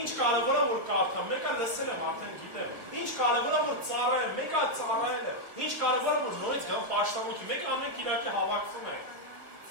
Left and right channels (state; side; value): late; left; 1.4 ms